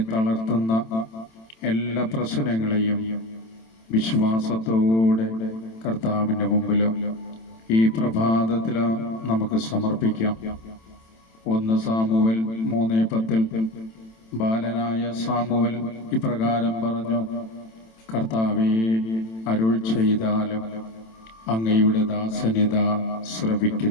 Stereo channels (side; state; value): right; late; 27 ms